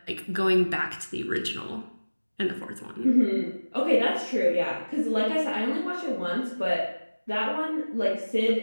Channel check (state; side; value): inverted; both; correlation -1.00